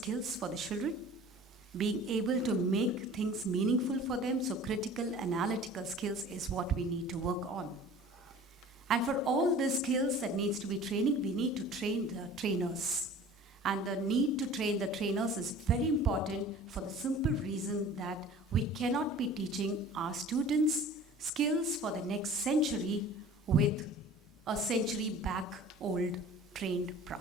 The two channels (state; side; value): normal; both; correlation 0.44